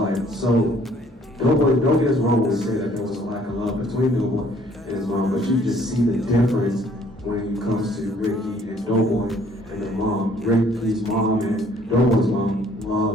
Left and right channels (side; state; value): both; normal; correlation 0.60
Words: So, Doughboy, don't get us wrong when we say that there was a lack of love between Doughboy and his mom, but you just see the difference when it comes to Ricky and Doughboy and their mom. Ricky's mom and Doughboy's mom